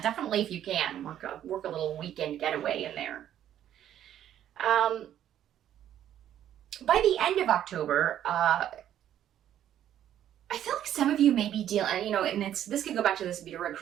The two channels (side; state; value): left; quieter; 11.0 dB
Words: definitely, if you can, work a little weekend getaway in there. By the end of October, I feel like some of you may be dealing, and this could go back to this